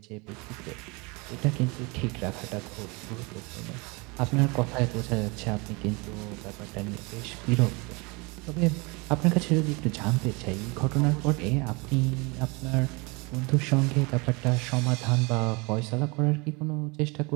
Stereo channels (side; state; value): left; quieter; 27.7 dB